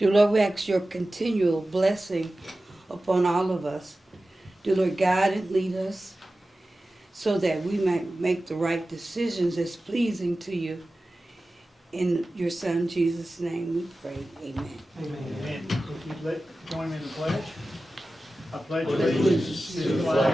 Lord, we ask your continual blessing upon all of us. Dear Lord, guide and lead us so that we might make the right decisions that's pleasing to you. In your Son, Jesus' name, we pray. Amen. Amen. If you'd join me in the pledge. I pledge allegiance to the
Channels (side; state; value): both; normal; correlation 0.95